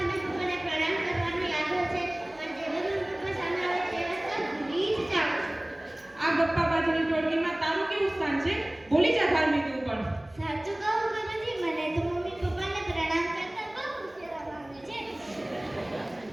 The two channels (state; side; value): noise; right; hum, 27 dB below the sound